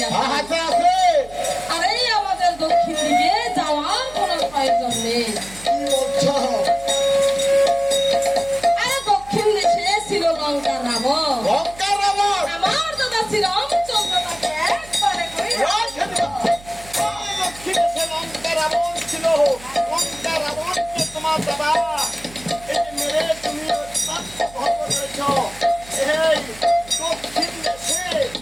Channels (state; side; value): noise; right; hum, 20 dB below the sound